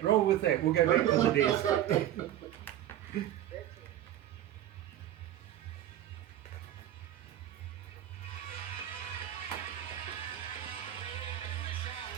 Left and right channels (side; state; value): left; quieter; 12.2 dB